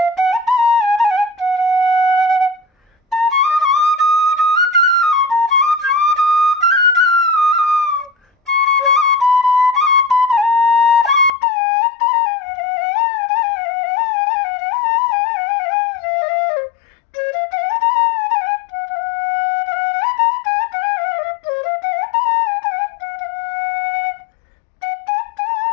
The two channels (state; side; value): drops out; right; at 11.3 s